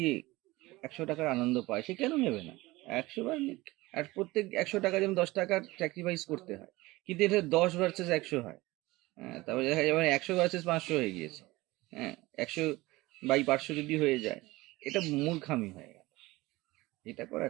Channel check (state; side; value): quieter; left; 20.2 dB